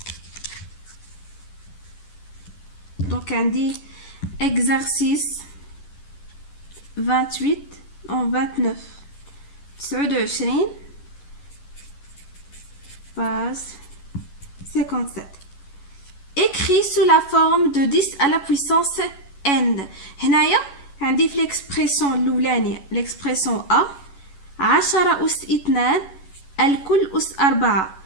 دونك عندي exercice 28 en 29 29 page 57. écrit sous la forme de 10 à la puissance n. هنايا عندي في ليكسبريسيون الاولانيه ليكسبريسيون ا 10 أس 2 الكل أس 4.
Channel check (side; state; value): right; late; 11 ms